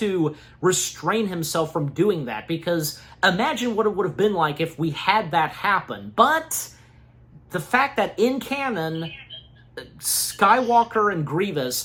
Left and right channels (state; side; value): identical; both; correlation 1.00